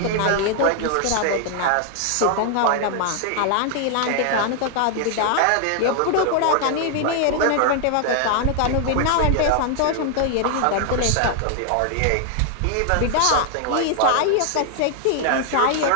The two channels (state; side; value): different; both; correlation 0.00